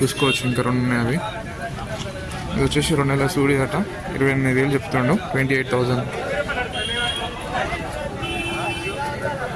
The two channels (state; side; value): identical; both; correlation 1.00